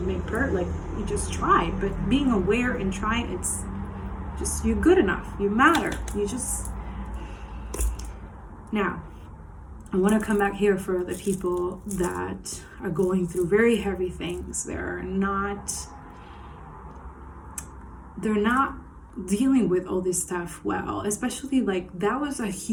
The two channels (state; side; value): identical; both; correlation 1.00